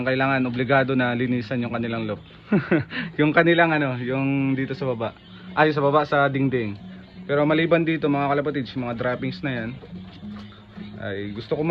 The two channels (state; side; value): identical; both; correlation 1.00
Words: kailangan, obligado na linisan yung kanilang loop. Yung kanilang yung dito sa baba, ay sa baba sa dingding. Pero maliban dito mga kalapatids, mga droppings na yan ay gusto ko